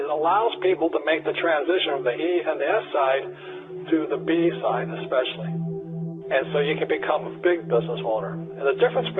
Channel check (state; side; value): identical; both; correlation 1.00